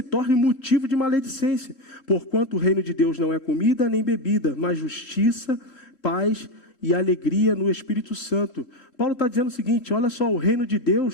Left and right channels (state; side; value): late; right; 3.7 ms